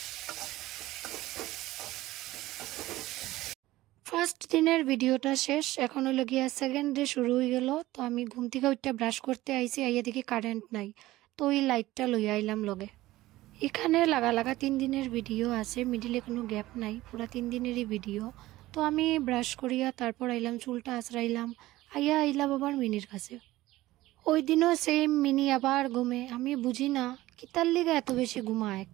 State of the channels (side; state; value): left; quieter; 17.0 dB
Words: ফার্স্ট দিনের ভিডিওটা শেষ, এখন হলো গিয়া সেকেন্ড ডে শুরু হয়ে গেল। তো আমি ঘুম থেকে উঠতে ব্রাশ করতে আইছি, আইয়া দেখি কারেন্ট নাই। তো ওই লাইটটা লইয়া আইলাম লগে। এখানে লাগা লাগা 3 দিনের ভিডিও আছে, মিডিলে কোনো গ্যাপ নাই, পুরা 3 দিনেরই ভিডিও। তো আমি ব্রাশ করিয়া তারপর আইলাম, চুলটা আঁচড়াইলাম, আইয়া আইলাম আবার মিনির কাছে। ওই দিনও সেম, মিনি আবার ঘুমে। আমি বুঝি না কিতার লিগা এত বেশি ঘুমায়